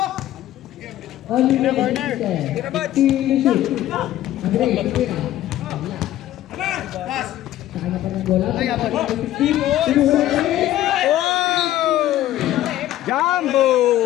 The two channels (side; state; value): right; quieter; 13.7 dB